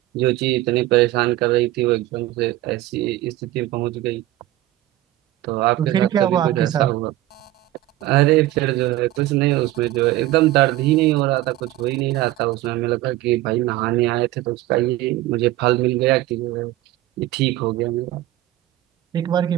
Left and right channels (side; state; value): left; quieter; 15.7 dB